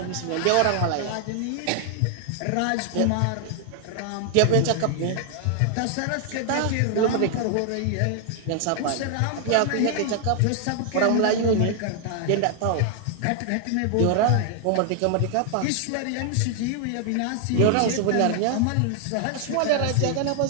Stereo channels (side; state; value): both; different; correlation 0.00